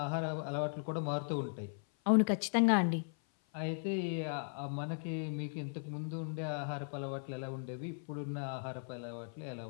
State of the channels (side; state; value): right; silent; 53 dB below the other